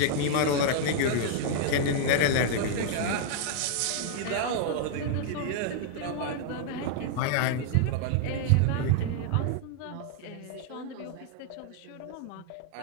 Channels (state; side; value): different; both; correlation 0.00